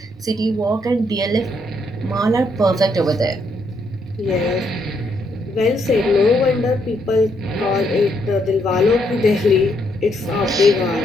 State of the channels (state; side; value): normal; both; correlation 0.74